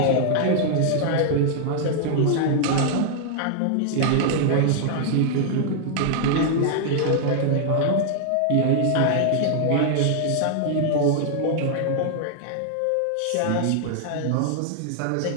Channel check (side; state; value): both; different; correlation 0.00